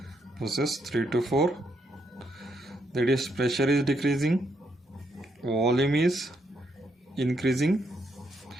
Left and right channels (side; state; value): both; normal; correlation 0.77